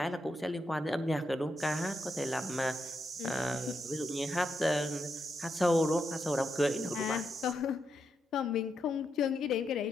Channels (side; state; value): both; normal; correlation 0.82